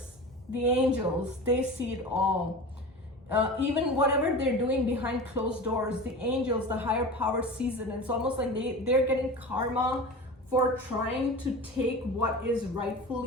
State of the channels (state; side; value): normal; both; correlation 0.32